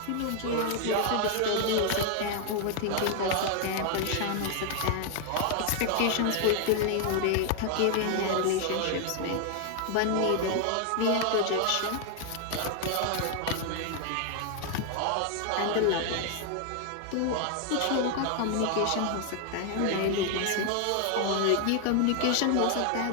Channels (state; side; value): different; both; correlation 0.00